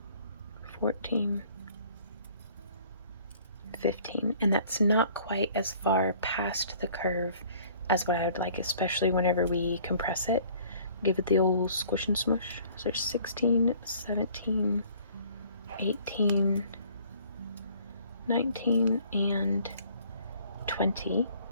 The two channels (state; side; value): inverted; both; correlation -0.55